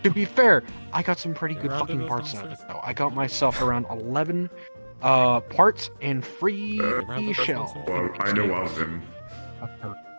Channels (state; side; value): inverted; both; correlation -1.00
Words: be fair, I got some pretty good fucking parts out of it though. I got myself around 11 parts and free shell. Well, I know of them.